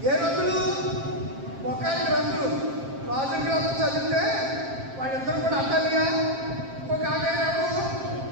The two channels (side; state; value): left; late; 7.5 ms